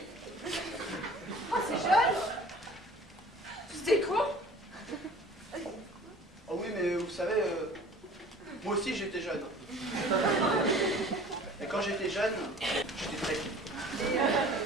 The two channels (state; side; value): normal; both; correlation 0.46